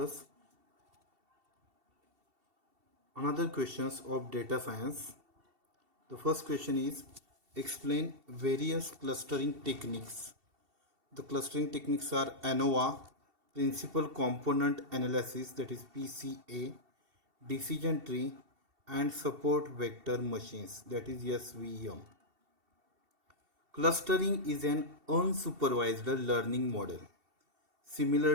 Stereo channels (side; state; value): left; late; 2.7 ms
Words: another questions of data science. The first question is explain various clustering techniques. The clustering techniques are ANOVA, principal component analysis, that is PCA, decision tree, and support vector machines, that is SVM. Clustering is an unsupervised learning model